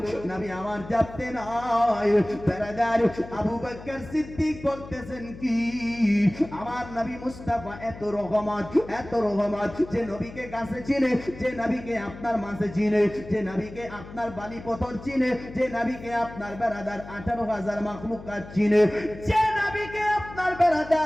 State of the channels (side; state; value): left; noise; hum, 15 dB below the sound